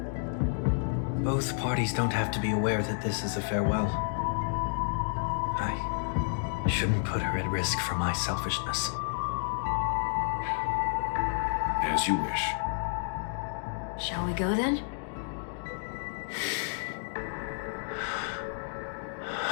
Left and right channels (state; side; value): silent; right; digital silence